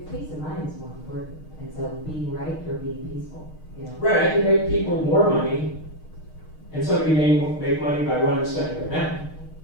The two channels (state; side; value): late; right; 6.4 ms